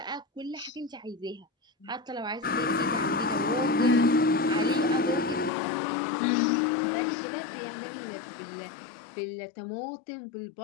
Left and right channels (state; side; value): drops out; right; at 5.5 s